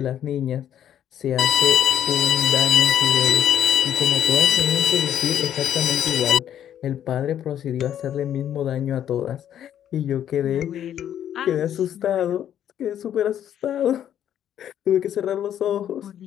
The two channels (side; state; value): right; quieter; 10.3 dB